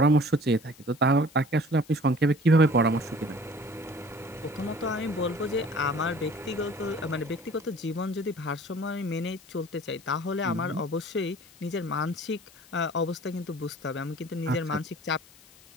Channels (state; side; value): noise; left; hiss, 24 dB below the sound